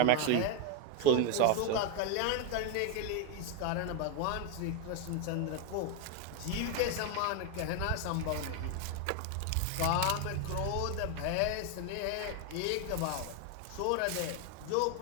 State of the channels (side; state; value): both; different; correlation 0.01